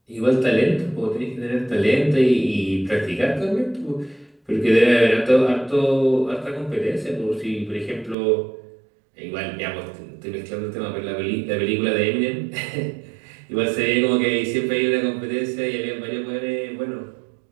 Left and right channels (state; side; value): drops out; left; at 8.2 s